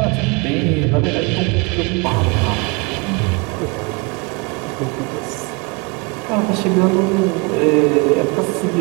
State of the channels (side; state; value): left; quieter; 29.4 dB